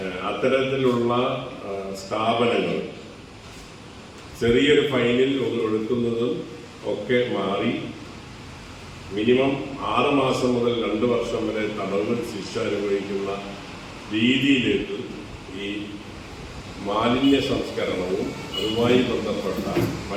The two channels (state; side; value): identical; both; correlation 1.00